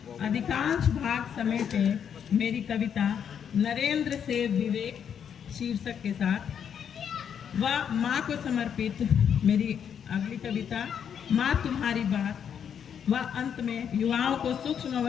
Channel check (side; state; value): right; quieter; 8.1 dB